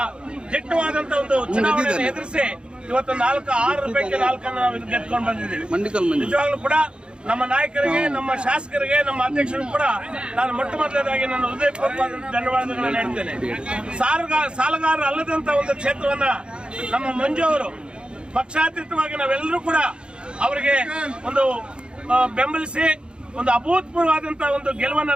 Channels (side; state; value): left; late; 0.053 ms